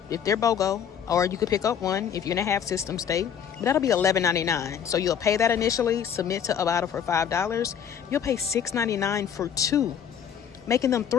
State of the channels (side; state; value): right; quieter; 8.4 dB